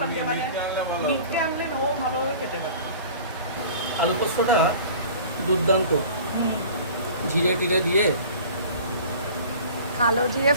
যে মানে নিতে আনলে ও ভালোভাবে খেতে পারতো। আলু পোস্তটা দুর্দান্ত, জিরে টিরে দিয়ে কালো জিরে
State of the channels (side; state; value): both; inverted; correlation -0.43